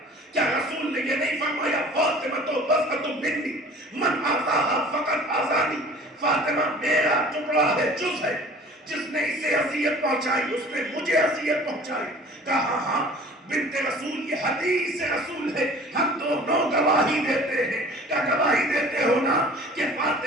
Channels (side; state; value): both; normal; correlation 0.46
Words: کیا رسول نے یہ نہیں فرمایا فاطمہ تو بضعۃ منی من آذاہا فقط آذانی، فاطمہ میرا ٹکڑا ہے، جز ہے، جس نے اسے اذیت پہنچائی اس نے مجھے اذیت پہنچائی۔ کہا ہاں بنت رسول یہ حدیث رسول ہے، ہم دونوں گواہی دیتے ہیں۔ کیا گواہی دیتے ہو نا کہ